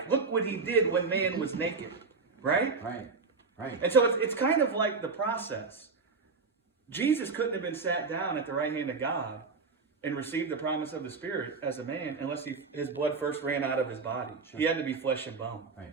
Look what he did when man was naked. Right? Right. And so it's kind of like the process. Jesus couldn't have been sat down at the right hand of God and received the promise of the Spirit as a man unless his blood first ran out of his body. He had to be flesh and bone.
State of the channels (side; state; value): left; quieter; 4.5 dB